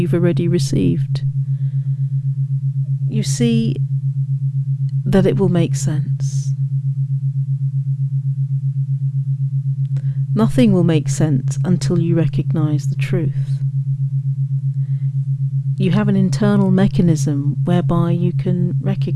already received. You see that it will make sense. Nothing will make sense until you recognize the truth. You have an internal mechanism whereby you can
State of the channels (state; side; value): identical; both; correlation 1.00